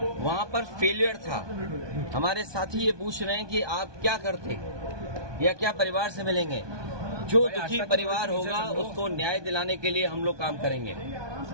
वहां पर फेलियर था, हमारे साथी ये पूछ रहे हैं कि आप क्या करते या क्या परिवार से मिलेंगे। जो दुखी परिवार होगा उसको न्याय दिलाने के लिए हम लोग काम करेंगे।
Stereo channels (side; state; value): left; late; 1.2 ms